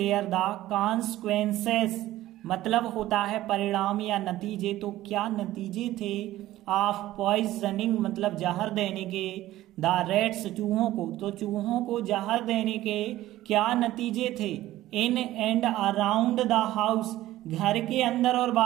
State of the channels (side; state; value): left; quieter; 15.2 dB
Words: द कॉन्सिक्वेंसेस मतलब होता है परिणाम या नतीजे, तो क्या नतीजे थे, ऑफ पॉइजनिंग मतलब जहर देने के, द रैट्स चूहों को, तो चूहों को जहर देने के क्या नतीजे थे, इन एंड अराउंड द हाउस घर के अंदर और